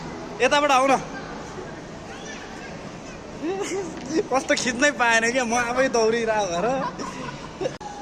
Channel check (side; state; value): both; identical; correlation 1.00